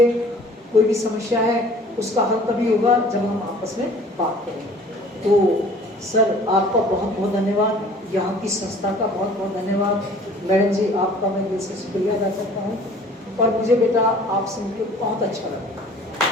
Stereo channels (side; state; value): both; normal; correlation 0.50